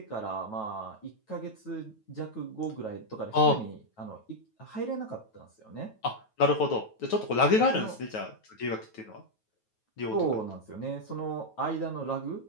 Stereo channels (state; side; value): late; right; 9.2 ms